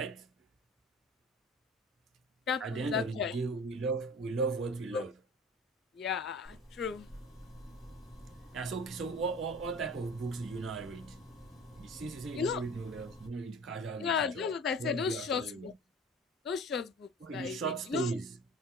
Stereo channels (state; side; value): normal; both; correlation 0.41